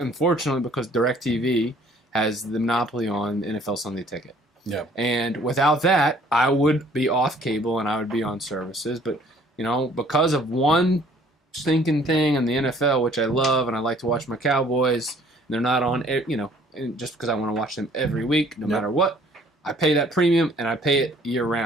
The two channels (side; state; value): both; normal; correlation 0.57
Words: because DirecTV has the monopoly on NFL Sunday Ticket. Yeah. And without that, I would be off cable and I would be on services. But, because of one stinking thing in the NFL, which I love, and I like to watch my Cowboys, they're not on, just because I want to watch them every week, no matter what. I pay that premium and I pay it year